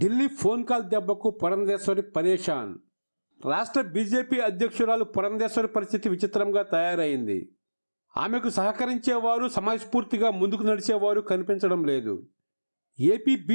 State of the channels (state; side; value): inverted; both; correlation -1.00